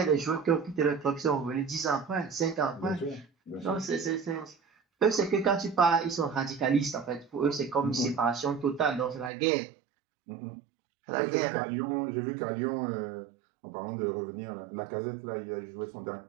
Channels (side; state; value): left; drops out; at 9.3 s